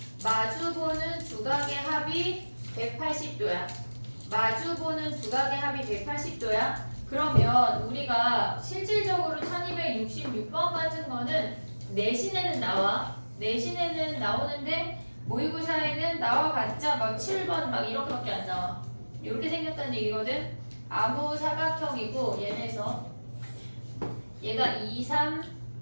마주보는 두각의 합이 180도야. 마주보는 두각의 합이 180도야. 그러면 우리가 실질적으로 1266번 같은 거는 내신에는 나와. 내신에는 나오는데 모의고사에는 나와 봤자 막 7번 막 이렇게밖에 안 나와. 이렇게 생겼다는 얘기거든. 아무 사각형이고 얘네에서 얘가 2, 3,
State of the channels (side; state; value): both; inverted; correlation -1.00